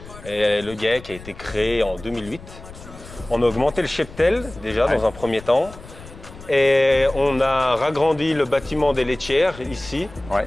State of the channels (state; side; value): noise; left; rumble, 17 dB below the sound